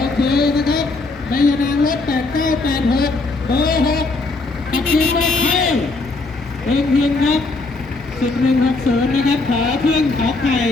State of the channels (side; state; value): right; quieter; 3.5 dB